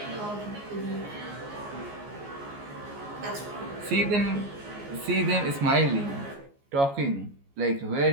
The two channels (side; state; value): left; late; 14 ms